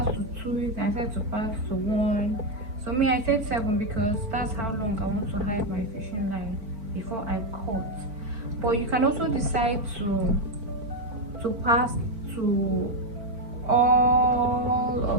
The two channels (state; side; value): late; left; 4.4 ms